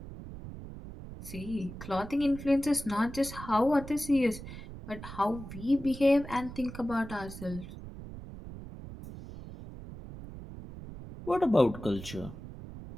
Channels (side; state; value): right; noise; rumble, 12 dB below the sound